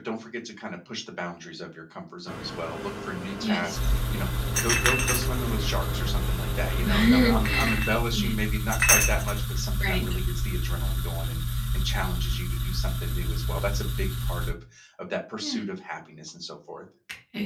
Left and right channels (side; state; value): both; identical; correlation 1.00